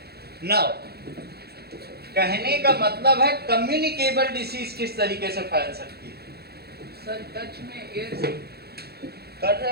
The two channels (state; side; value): late; left; 0.46 ms